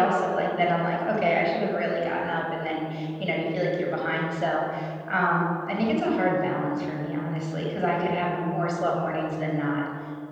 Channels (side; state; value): both; identical; correlation 1.00